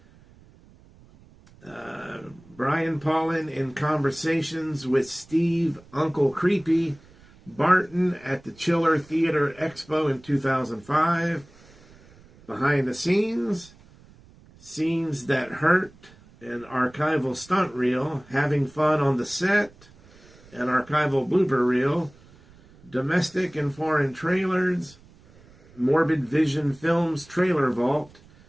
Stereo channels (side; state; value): right; noise; rumble, 26 dB below the sound